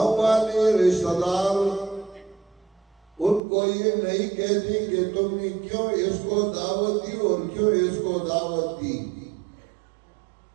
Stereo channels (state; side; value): drops out; left; at 3.4 s